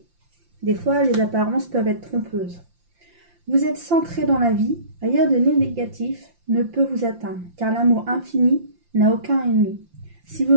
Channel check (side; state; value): left; late; 5.8 ms